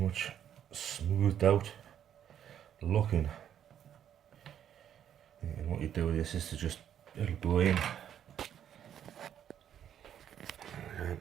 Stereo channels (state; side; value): quieter; left; 9.7 dB